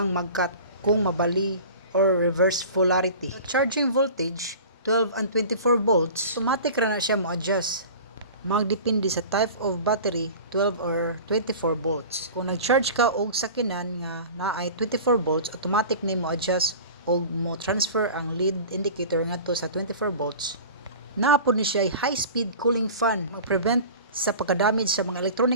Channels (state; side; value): inverted; both; correlation -0.38